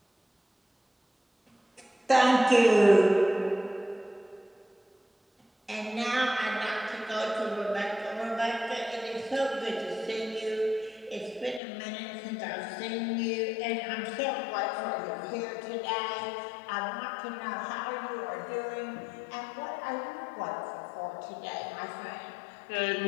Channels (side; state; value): right; drops out; at 11.6 s